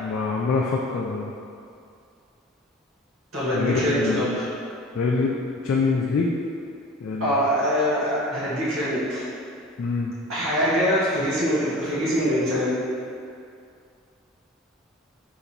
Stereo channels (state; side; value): normal; both; correlation 0.40